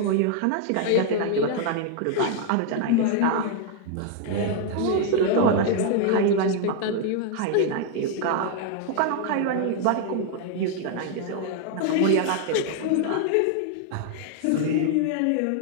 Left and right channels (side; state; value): both; different; correlation 0.00